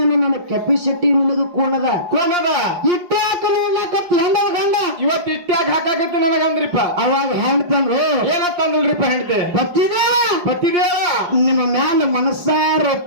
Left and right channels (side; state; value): left; late; 5.6 ms